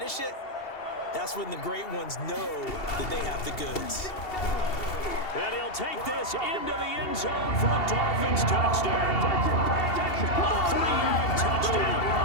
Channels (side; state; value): right; late; 2.7 ms